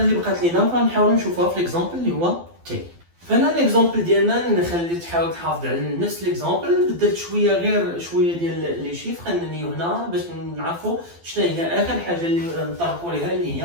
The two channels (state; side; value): late; left; 12 ms